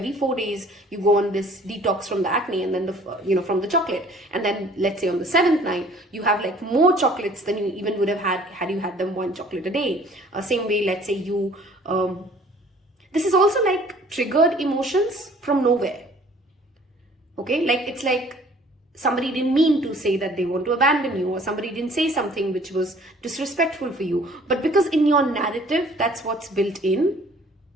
4 days, you go on this detox from the acne and then from the chocolate. And then let's say on the 7th night, you have like more chocolates than you even would have had you had them 1 chocolate a day. Same way, let's say you, this is also like triggered emotions from nowhere. Okay, like it's like somebody didn't mean to say that they want to abandon you, or somebody didn't say something which was disrespectful for you. But because in your narrative, that's what's built in,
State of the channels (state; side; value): normal; both; correlation 0.54